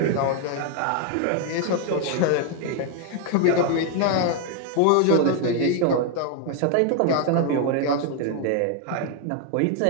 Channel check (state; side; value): different; both; correlation 0.01